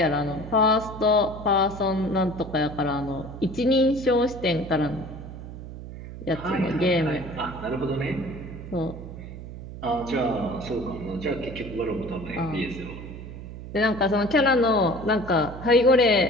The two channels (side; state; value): right; noise; hum, 12 dB below the sound